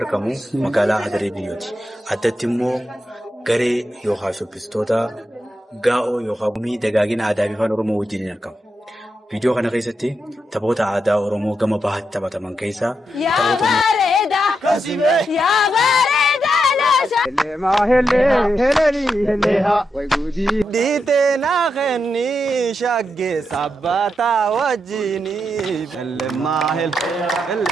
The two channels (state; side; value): normal; both; correlation 0.84